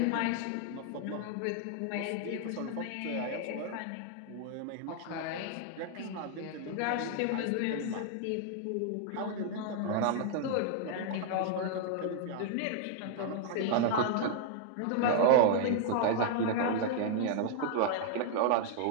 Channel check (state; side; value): different; both; correlation 0.00